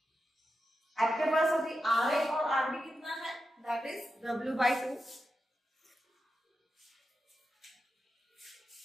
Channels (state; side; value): normal; both; correlation 0.89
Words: आपके पास अभी RA और RB कितना है, that is W/2,